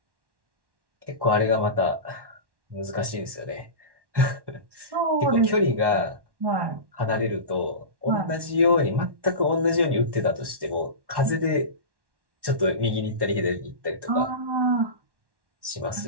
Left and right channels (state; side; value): late; left; 1.1 ms